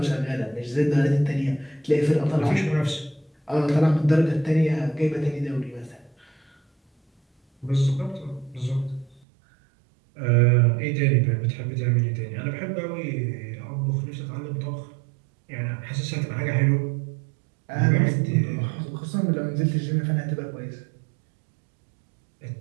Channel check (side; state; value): left; drops out; at 9.2 s